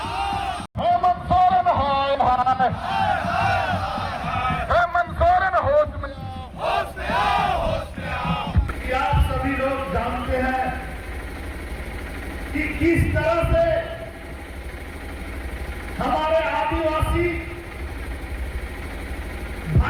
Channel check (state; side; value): identical; both; correlation 1.00